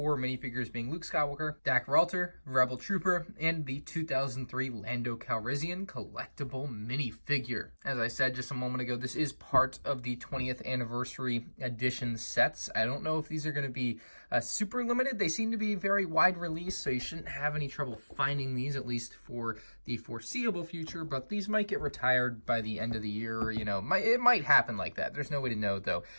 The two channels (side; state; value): both; inverted; correlation -1.00